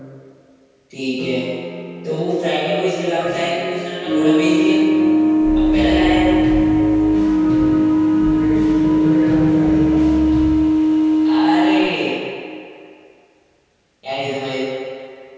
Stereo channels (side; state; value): both; identical; correlation 1.00